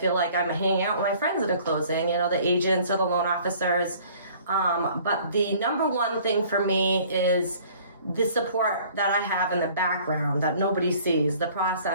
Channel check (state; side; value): inverted; both; correlation -0.53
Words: like I'm hanging out with my friends at a closing, the agents or the loan officers. But the number one thing for me is the support that I have in the background that nobody sees, the